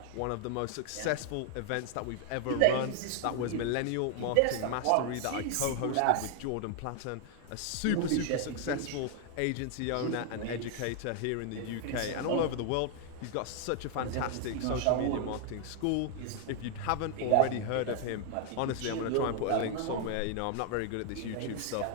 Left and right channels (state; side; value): different; both; correlation 0.00